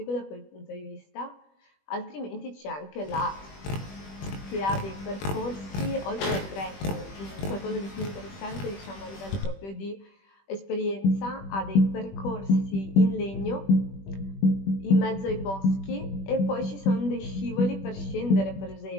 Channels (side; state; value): right; late; 21 ms